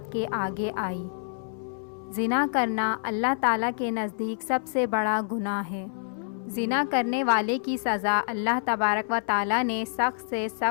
کے آگے آئی۔ زنا کرنا اللہ تعالیٰ کے نزدیک سب سے بڑا گناہ ہے۔ زنا کرنے والے کی سزا اللہ تبارک و تعالیٰ نے سخت سے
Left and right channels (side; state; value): right; silent; 60 dB below the other